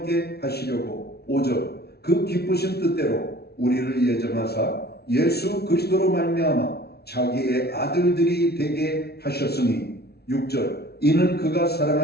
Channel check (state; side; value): late; right; 0.46 ms